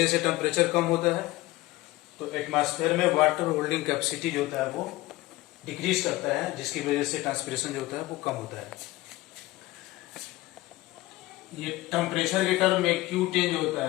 जैसे टेम्परेचर कम होता है तो एटमॉस्फेयर में वाटर होल्डिंग कैपेसिटी जो होता है वो डिक्रीज करता है, जिसकी वजह से ट्रांसपिरेशन जो होता है वो कम होता है। ये टेम्परेचर के टर्म में क्यू टेन जो होता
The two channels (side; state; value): right; quieter; 18.8 dB